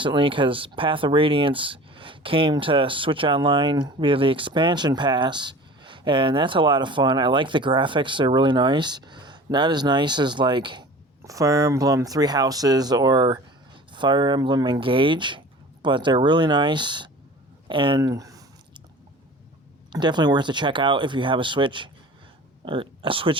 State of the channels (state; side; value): normal; both; correlation 0.41